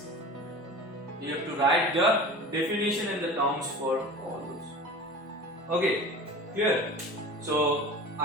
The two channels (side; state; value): both; normal; correlation 0.37